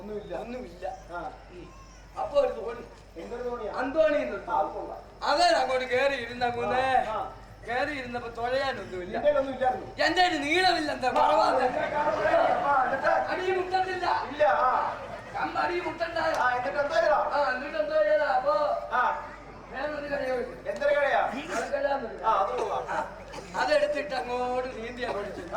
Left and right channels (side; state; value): both; identical; correlation 1.00